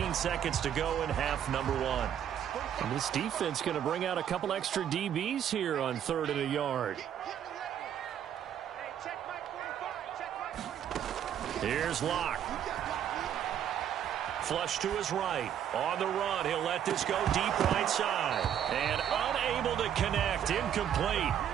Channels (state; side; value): quieter; left; 9.7 dB